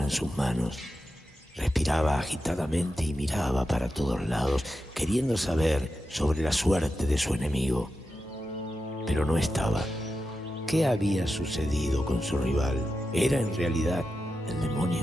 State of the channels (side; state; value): both; normal; correlation 0.90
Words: en sus manos. Respiraba agitadamente y miraba para todos lados, queriendo saber sobre la suerte de su enemigo. Pero no estaba. ¿Qué había sucedido con su rival? ¿Era en realidad el